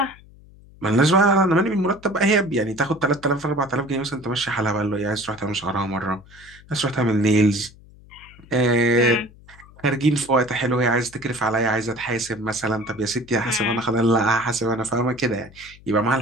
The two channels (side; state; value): left; noise; hum, 23 dB below the sound